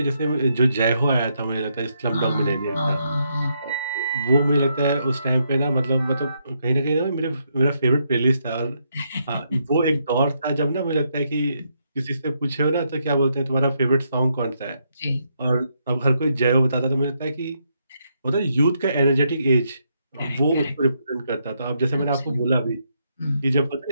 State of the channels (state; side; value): inverted; both; correlation -0.78